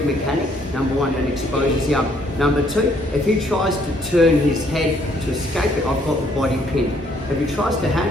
mechanic, number one, and exposes the arm. Number two, if he tries to turn his head to escape it, I've got the body pinned. If he tries to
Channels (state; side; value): normal; both; correlation 0.66